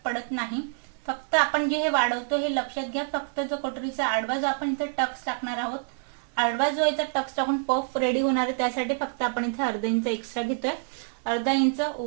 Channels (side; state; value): left; silent; digital silence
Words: पडत नाही. फक्त आपण जे हे वाढवतो हे लक्षात घ्या. फक्त जो कटोरीचा आडवा जो आपण इथे टक्स टाकणार आहोत, आडवा जो याचा टक्स टाकून पफ रेडी होणार आहे त्यासाठी फक्त आपण इथे अर्धा इंच एक्स्ट्रा घेतोय. अर्धा इंच